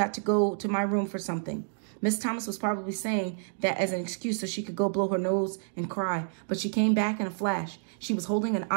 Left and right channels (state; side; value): silent; left; digital silence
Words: to go to my room for something." Miss Thomas was probably saying that as an excuse so she could go blow her nose and cry, but she came back in a flash. She was holding an